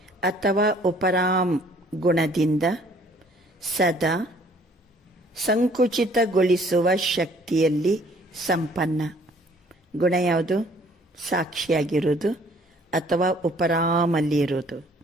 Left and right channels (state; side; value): normal; both; correlation 0.58